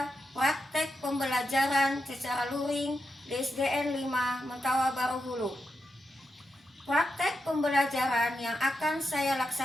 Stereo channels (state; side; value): normal; both; correlation 0.87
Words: praktek pembelajaran secara luring di SDN 5 Mentawa Baru Hulu. Praktek pembelajaran yang akan saya